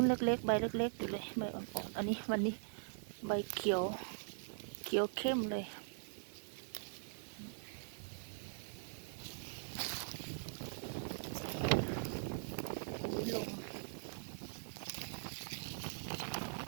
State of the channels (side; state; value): left; silent; digital silence